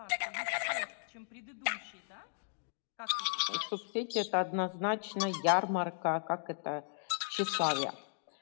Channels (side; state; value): right; silent; digital silence